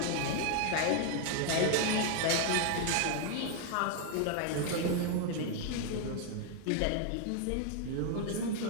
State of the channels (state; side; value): different; both; correlation 0.00